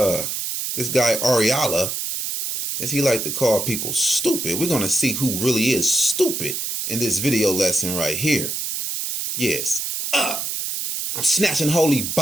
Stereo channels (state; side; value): noise; right; hiss, 3 dB below the sound